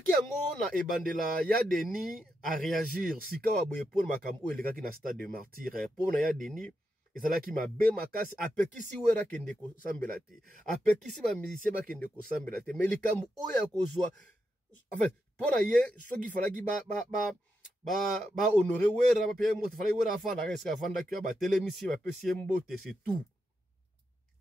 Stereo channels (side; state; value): both; normal; correlation 0.85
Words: yango na ebandela ya Denis à réagir sika wa boye pour makambo elekaki na stade de martyr pour na ya Denis ezalaki mabe makasi apekisi wera kende ko sambela te apekisi ba musicien ba kende ko sambela te mais likambo oya kozwa en fait pour ye soki falaki ba honorer wera ba payer moto falaki wera afanda reska afanda ki ba telemisi ba pesi mbote c'est tout